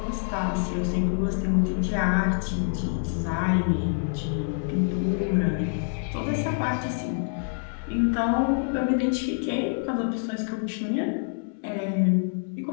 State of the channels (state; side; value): silent; right; digital silence